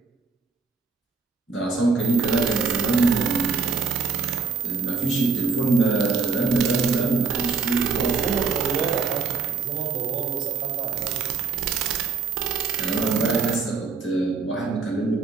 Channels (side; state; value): left; quieter; 4.4 dB